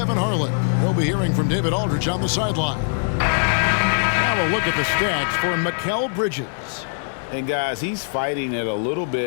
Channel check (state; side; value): silent; right; digital silence